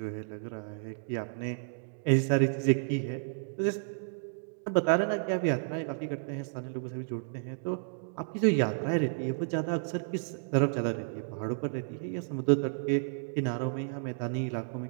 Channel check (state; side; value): silent; left; digital silence